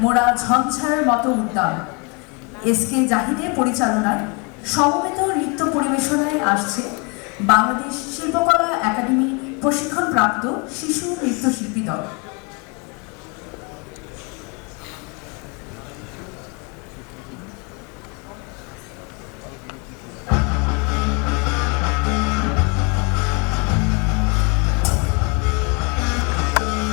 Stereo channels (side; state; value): right; quieter; 32.5 dB